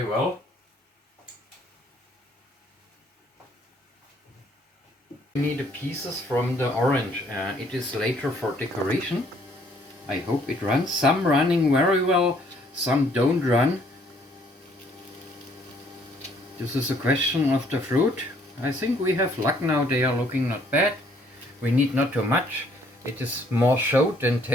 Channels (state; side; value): normal; both; correlation 0.64